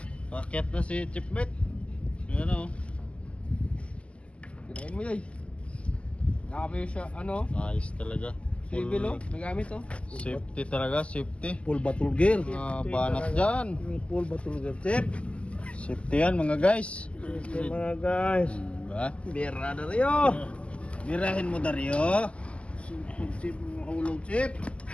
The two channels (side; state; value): right; late; 0.057 ms